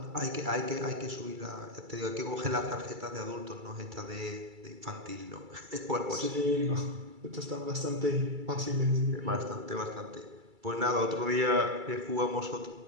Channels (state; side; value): late; left; 2.3 ms